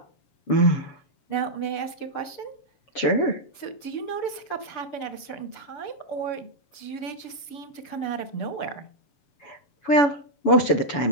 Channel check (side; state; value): right; late; 6.8 ms